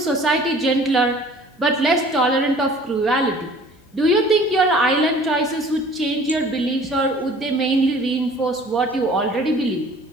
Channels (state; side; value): normal; both; correlation 0.50